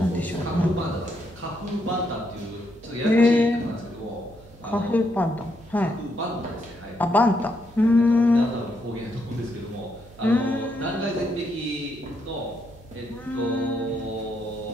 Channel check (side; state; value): right; noise; hum, 23 dB below the sound